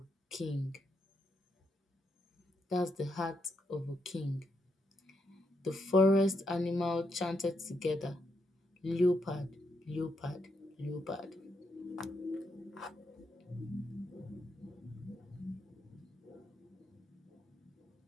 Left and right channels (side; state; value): both; normal; correlation 0.80